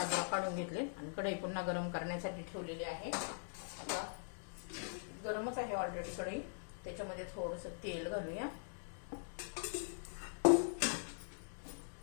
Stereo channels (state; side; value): silent; right; digital silence